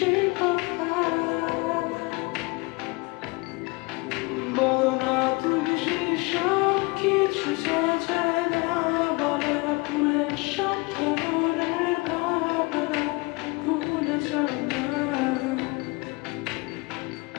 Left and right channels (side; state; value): right; quieter; 26.5 dB